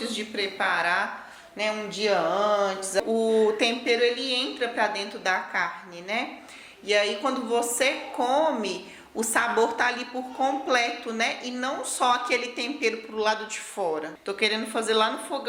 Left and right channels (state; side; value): identical; both; correlation 1.00